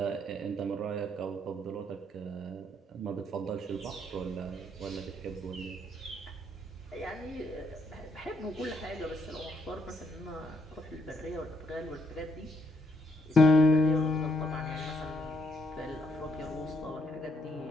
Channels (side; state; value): both; normal; correlation 0.73